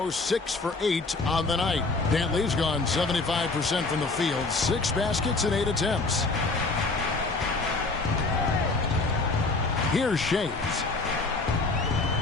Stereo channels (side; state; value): right; quieter; 3.6 dB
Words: 6 for 8 on the night. Dantley's gone 75% from the field. 6 baskets in 8 attempts. Here's Shays.